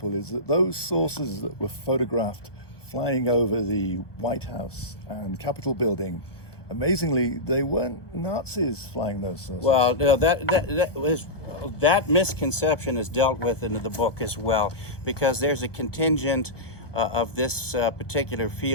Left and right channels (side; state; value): right; late; 1.1 ms